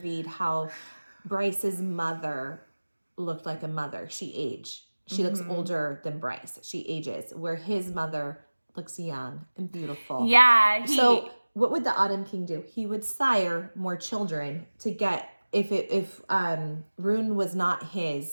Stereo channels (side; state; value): both; inverted; correlation -1.00